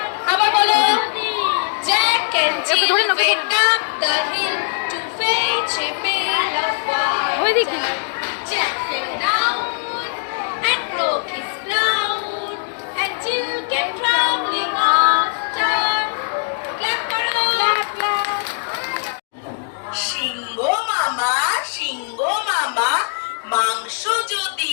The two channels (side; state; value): right; silent; digital silence